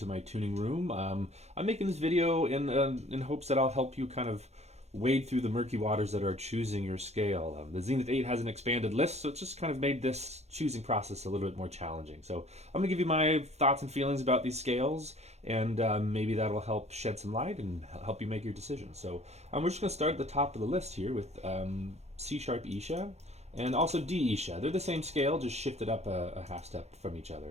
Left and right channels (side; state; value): left; late; 0.31 ms